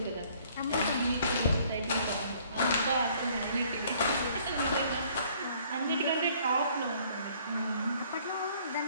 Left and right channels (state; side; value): inverted; both; correlation -0.60